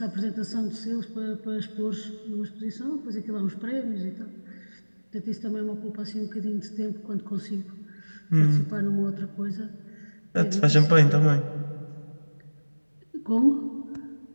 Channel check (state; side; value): inverted; both; correlation -1.00